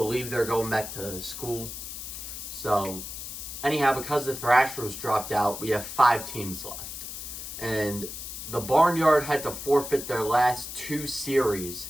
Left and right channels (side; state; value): left; noise; hiss, 8 dB below the sound